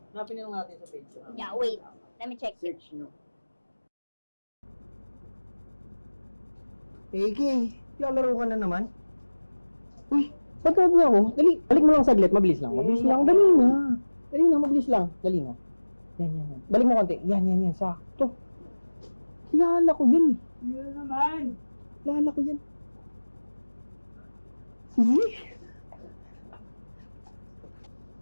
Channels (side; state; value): both; inverted; correlation -1.00